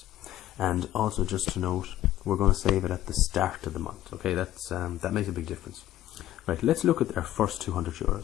and also just to note, we're going to save it at the start of the month. Okay, that makes a big difference. Right, let's look at our first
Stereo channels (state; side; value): quieter; right; 13.6 dB